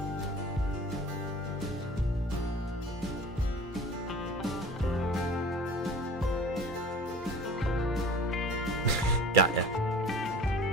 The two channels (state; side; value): normal; both; correlation 0.42